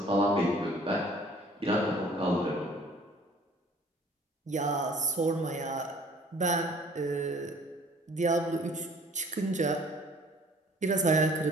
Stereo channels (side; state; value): both; normal; correlation 0.53